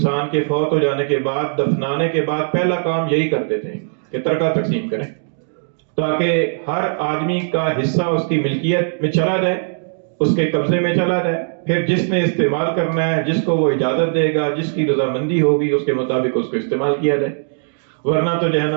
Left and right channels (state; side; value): silent; left; digital silence